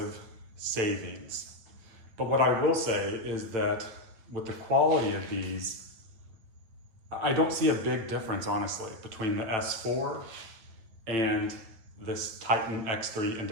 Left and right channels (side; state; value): left; late; 9.1 ms